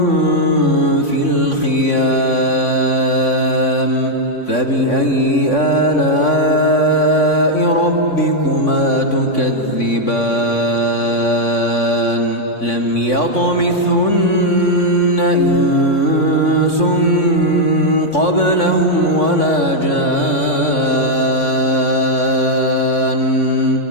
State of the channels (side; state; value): right; late; 3.6 ms